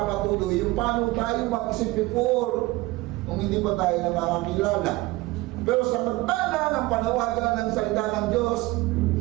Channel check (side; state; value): left; quieter; 20.5 dB